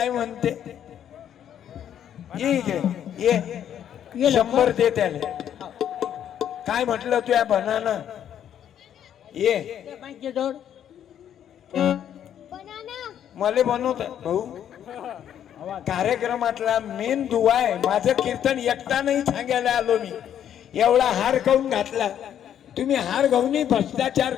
म्हणते, ये 100 दे त्याला. काय म्हटलं तू या बनाना ये मला बनवत भाऊ. कार्यक्रमातला मेन दुवा आहे. माझं कीर्तन एकटा नाही सांगायला आलो मी. एवढा हार खाऊन घातला तुम्ही, हार घाऊनही भ्रष्टाचार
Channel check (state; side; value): quieter; right; 9.9 dB